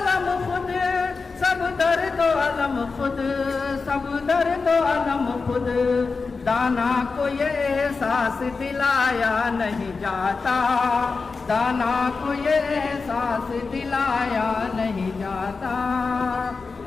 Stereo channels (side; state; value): right; quieter; 4.4 dB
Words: खुद, सब दर्द अलम खुद, सब दर्द अलम खुद। दाना को ये एहसास दिलाया नहीं जाता, दाना को ये एहसास दिलाया नहीं जाता।